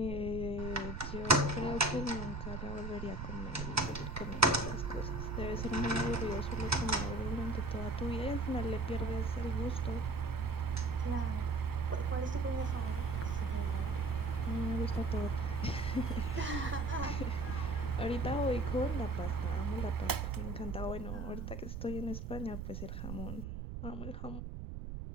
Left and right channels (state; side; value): noise; right; rumble, 6 dB below the sound